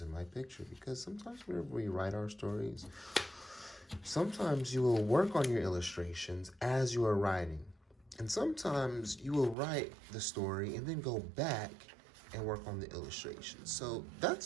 my picture because sometimes whenever we write our stories, sometimes you will work on your illustrations as you are writing. And sometimes you will write the story and then go back and work on the illustrations. So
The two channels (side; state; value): left; drops out; at 9.6 s